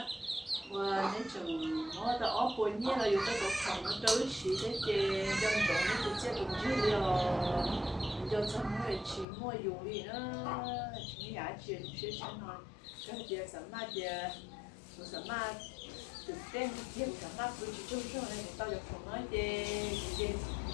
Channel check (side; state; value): right; drops out; at 9.2 s